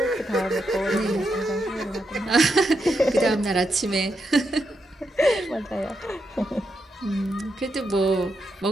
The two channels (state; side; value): normal; both; correlation 0.83